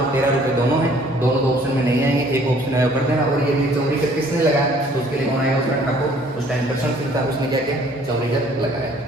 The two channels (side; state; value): both; normal; correlation 0.58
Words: 13 रुपए दोनों है, दोनों तो ऑप्शन में नहीं आएंगे, एक ऑप्शन है कर देना। और ये भी चौरीकर किसने लगाया, तो उसके लिए कौन आएगा, उसका ठाकुर। उस टाइम कृष्ण सिंह था, उसने क्या किया, चौरीकर लगाया।